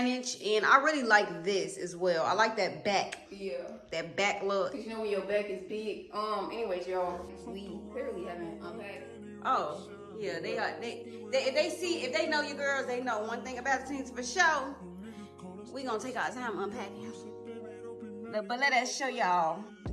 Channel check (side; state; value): both; identical; correlation 1.00